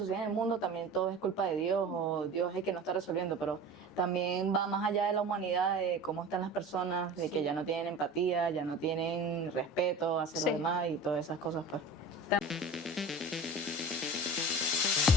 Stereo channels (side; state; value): both; normal; correlation 0.37